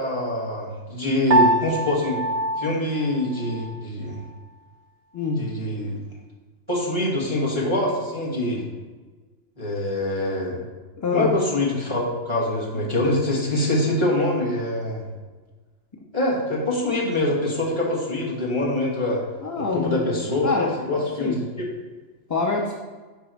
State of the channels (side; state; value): left; late; 2.9 ms